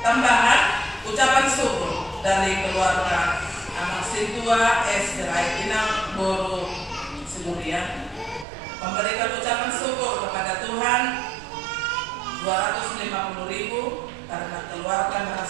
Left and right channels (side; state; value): left; drops out; at 8.5 s